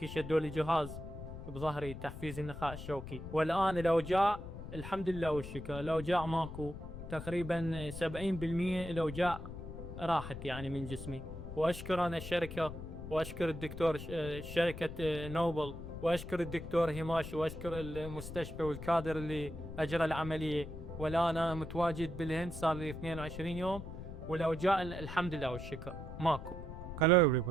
شدوا لي جهاز بظهري تحفيز النخاع الشوكي، والآن الأوجاع الحمد لله والشكر الأوجاع ماكو. تقريبا 70% الأوجاع راحت يعني من جسمي. وأشكر أنا الشركة، وأشكر الدكتور شركة نوبل، وأشكر الدكتور هيماش، وأشكر المستشفى والكادر اللي أجرى العملية. والآن أنا متواجد بالهند صار لي 22 يوم، والأوجاع الحمد لله والشكر ماكو. Hello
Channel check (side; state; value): left; noise; rumble, 10 dB below the sound